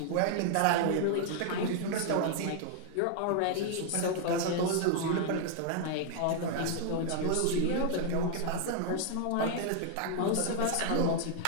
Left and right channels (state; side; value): different; both; correlation 0.00